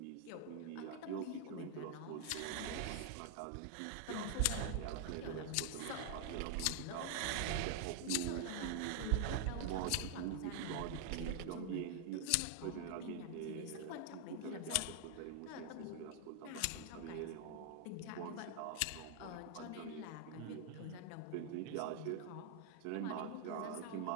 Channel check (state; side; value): different; both; correlation 0.00